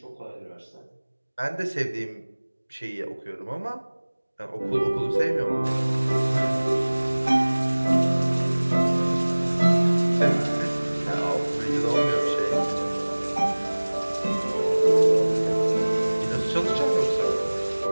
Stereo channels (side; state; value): both; inverted; correlation -1.00